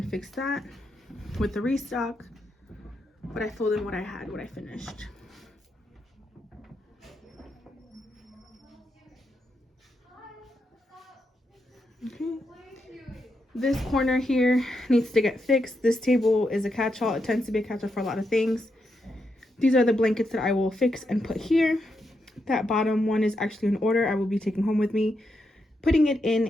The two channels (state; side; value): normal; both; correlation 0.83